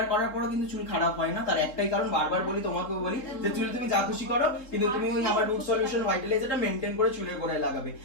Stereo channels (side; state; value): right; late; 3.5 ms